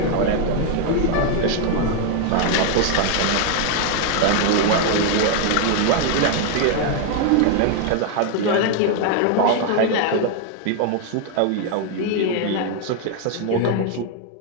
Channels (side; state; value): both; different; correlation 0.01